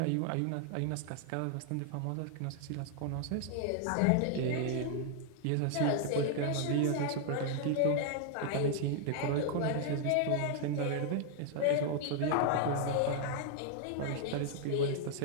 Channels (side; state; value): both; different; correlation 0.00